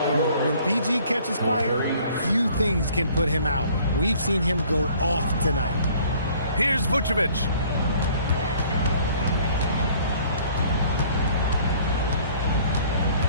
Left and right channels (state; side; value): inverted; both; correlation -0.56